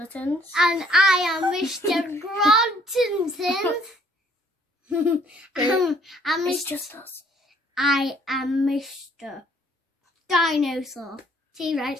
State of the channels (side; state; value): both; normal; correlation 0.62